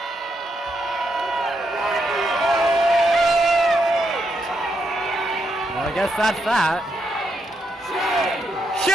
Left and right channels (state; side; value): normal; both; correlation 0.80